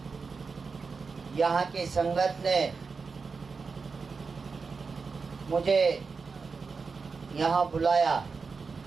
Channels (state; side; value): quieter; left; 4.8 dB